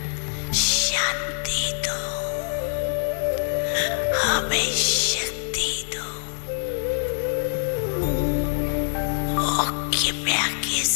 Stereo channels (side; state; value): right; silent; digital silence